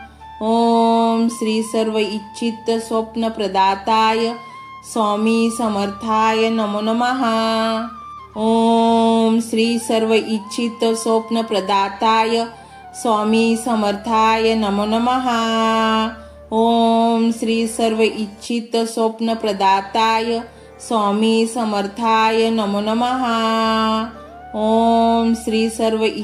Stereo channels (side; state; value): both; identical; correlation 1.00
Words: ओम श्री सर्व इच्छित स्वप्न प्रदाताय स्वामी समर्थाय नमो नमः। ओम श्री सर्व इच्छित स्वप्न प्रदाताय स्वामी समर्थाय नमो नमः। ओम श्री सर्व इच्छित स्वप्न प्रदाताय स्वामी समर्थाय नमो नमः। ओम श्री सर्व